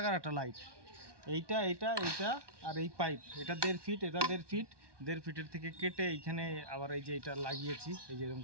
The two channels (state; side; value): late; left; 1.2 ms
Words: একটা লাইট। এইটা এইটা এইটা আর এই পাইপ, এটা 1.5 ফিট, এটা 1.5 ফিট। 1.5 ফিটের থেকে কেটে এইখানে আবার এই যে এটা লাগিয়েছি, এই যে এরকম